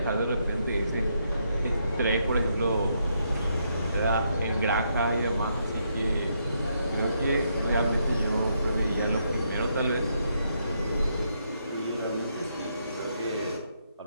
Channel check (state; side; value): inverted; both; correlation -0.77